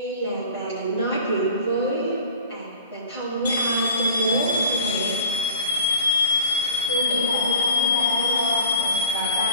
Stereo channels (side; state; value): both; inverted; correlation -0.43